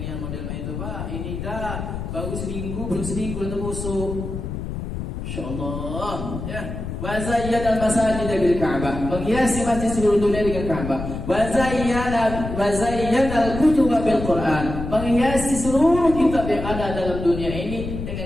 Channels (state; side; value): noise; left; rumble, 6 dB below the sound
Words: yang model itu Pak. Ini dah baru seminggu, belum seminggu dah terbusuk. Insyaallah ya. Wa zayyana al-masajid bil Ka'bah, menghiasi masjid seluruh dunia dengan Ka'bah. Wa zayyana al-kutub bil Quran, menghiasi seluruh kitab yang ada dalam dunia ini